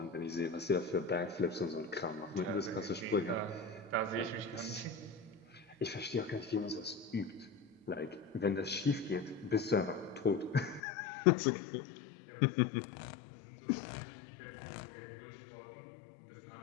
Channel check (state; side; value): drops out; right; at 10.8 s